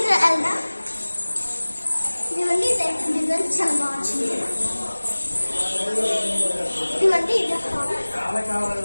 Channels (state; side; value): inverted; both; correlation -1.00